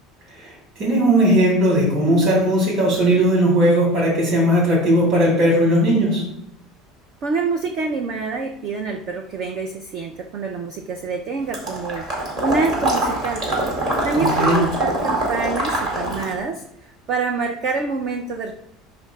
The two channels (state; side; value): normal; both; correlation 0.36